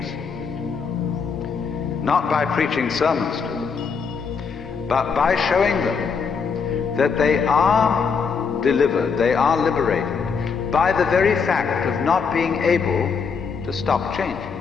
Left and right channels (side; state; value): right; quieter; 5.7 dB